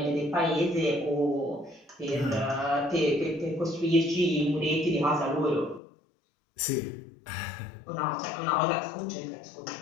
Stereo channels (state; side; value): drops out; right; at 5.8 s